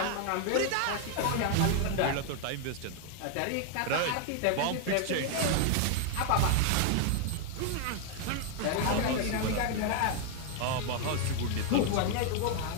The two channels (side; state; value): both; different; correlation 0.00